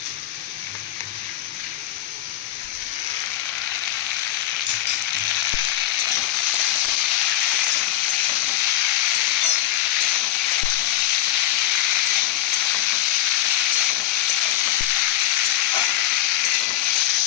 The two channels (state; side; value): quieter; right; 13.8 dB